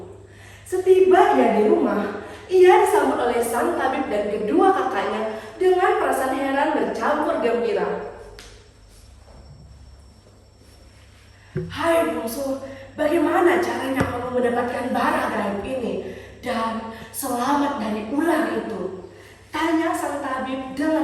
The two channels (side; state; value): both; identical; correlation 1.00